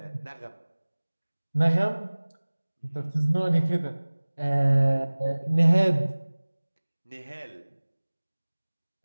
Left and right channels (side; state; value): both; inverted; correlation -1.00